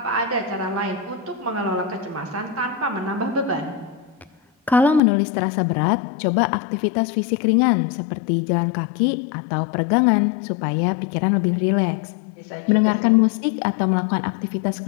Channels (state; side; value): drops out; right; at 5.0 s